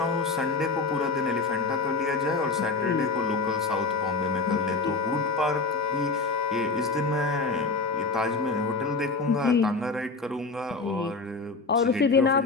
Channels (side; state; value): right; quieter; 4.0 dB